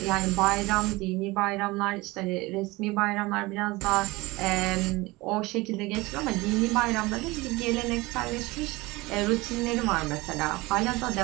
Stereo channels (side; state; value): left; quieter; 21.9 dB